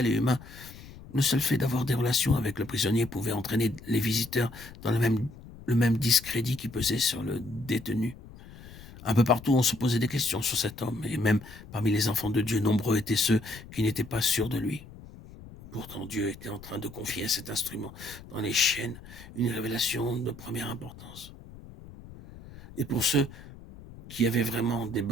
et humain, le seul fait d'avoir des relations avec le prisonnier pouvait entraîner les visiteurs dans le même discrédit qui pesait sur le détenu. Un peu partout, on se posait des questions sur cet homme, et même parmi les enfants de Dieu, nombreux étaient ceux qui n'étaient pas sûrs de lui. Pourtant, Dieu était en train de confier à cet instrument dans les chaînes une révélation de première importance. Et pour ceux qui avaient vraiment des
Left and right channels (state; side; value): noise; left; rumble, 17 dB below the sound